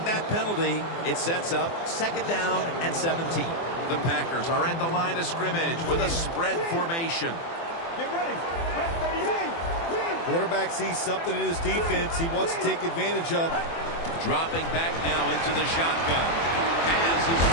that penalty, it sets up 2nd down and 17. The Packers are at the line of scrimmage with a spread formation. Get ready. Red 38. Quarterback sees something in his defense he wants to take advantage of. Dropping back now into the shotgun. Has his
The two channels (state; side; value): late; right; 24 ms